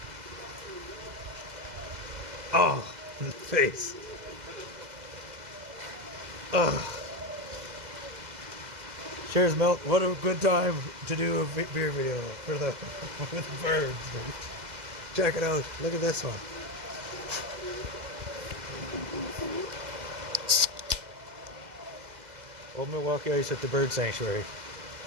Oh, in the face. Oh. Cheers, Milt. What a good time to do a beer video for the with birds. Dude. Check it out. Look at this one. Old Milwaukee Ice at the Bird Sanctuary.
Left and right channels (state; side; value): late; left; 2.0 ms